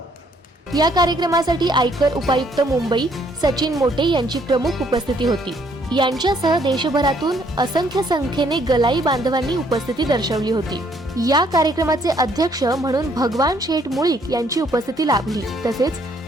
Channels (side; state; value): both; normal; correlation 0.67